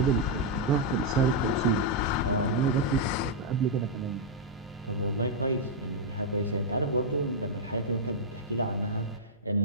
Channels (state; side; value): normal; both; correlation -0.05